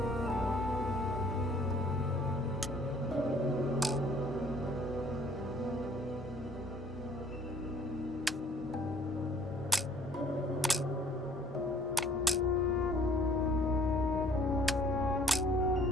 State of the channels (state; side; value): normal; both; correlation 0.58